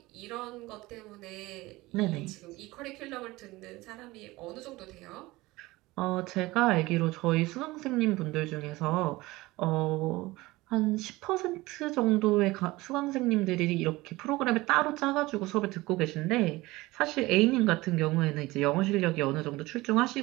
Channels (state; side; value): quieter; left; 20.1 dB